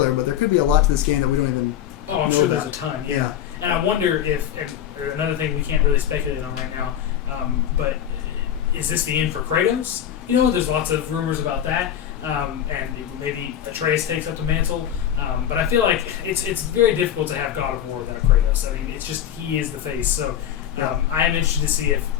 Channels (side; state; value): right; quieter; 10.2 dB